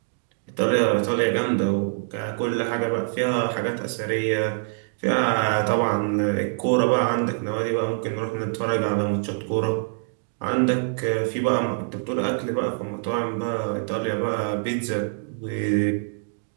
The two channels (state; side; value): silent; left; digital silence